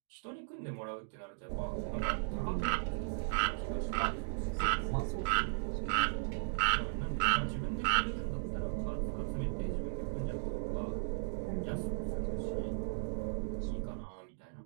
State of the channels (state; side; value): silent; left; digital silence